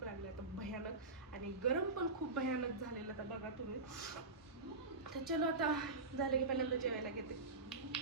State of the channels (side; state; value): left; quieter; 3.5 dB